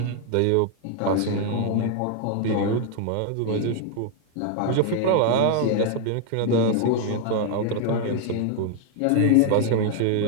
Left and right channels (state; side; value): different; both; correlation 0.00